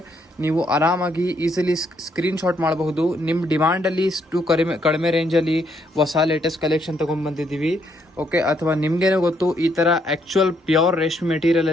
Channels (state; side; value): normal; both; correlation 0.73